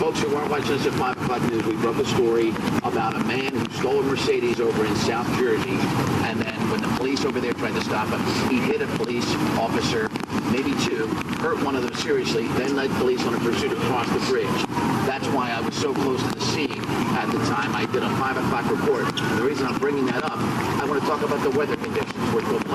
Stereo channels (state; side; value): identical; both; correlation 1.00